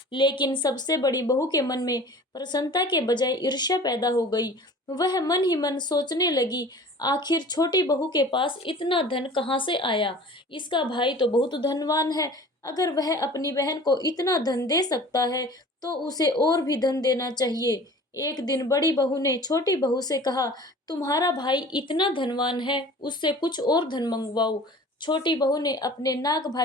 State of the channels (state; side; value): normal; both; correlation 0.43